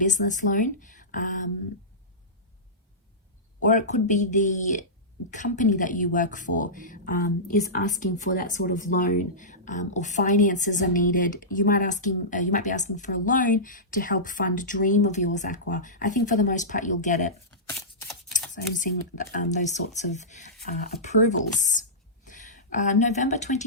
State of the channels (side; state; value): both; normal; correlation -0.17